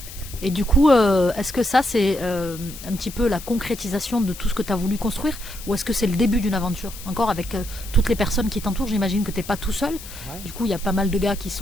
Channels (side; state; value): left; noise; hiss, 14 dB below the sound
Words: Et du coup, est-ce que ça, c'est un petit peu la concrétisation de tout ce que tu as voulu construire, ou est-ce que c'est le début d'une aventure? Encore avec toutes les personnes qui t'entourent, j'imagine que tu n'es pas tout seul. Ouais. Du coup, il y a pas mal de gars qui